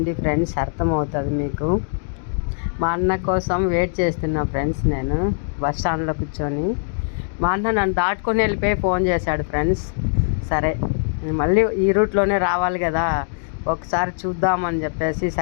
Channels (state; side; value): silent; right; digital silence